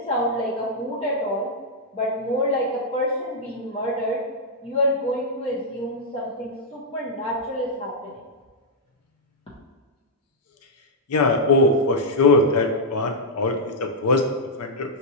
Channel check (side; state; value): both; normal; correlation -0.06